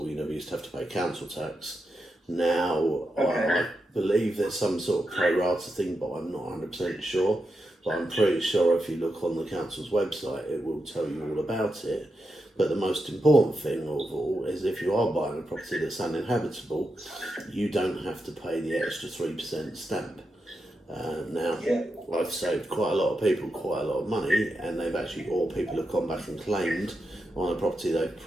you never used to have to pay council tax. Now, I believe there's some sort of pro rata thing, but I'm not 100% sure. But I'm pretty sure if you look on the council's website, it will tell you all about it. But the most important thing of all is if you are buying a property that's uninhabitable, you don't have to pay the extra 3% stamp. Now, I've saved quite a lot of people quite a lot of money, and or people have gone back and claimed on a property they've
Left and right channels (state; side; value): normal; both; correlation 0.86